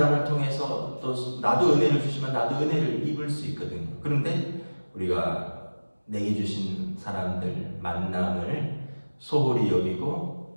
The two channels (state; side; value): inverted; both; correlation -1.00